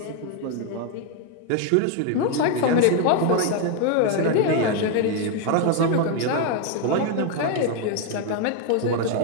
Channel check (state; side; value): different; both; correlation 0.01